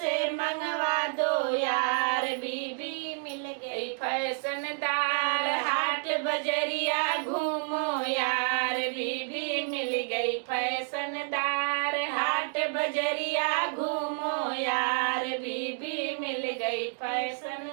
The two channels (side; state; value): left; silent; 56 dB below the other